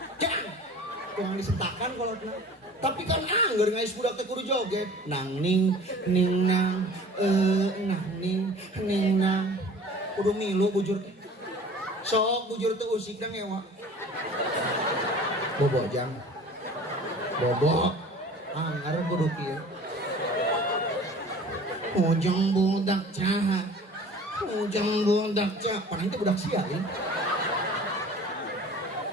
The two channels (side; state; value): both; normal; correlation 0.44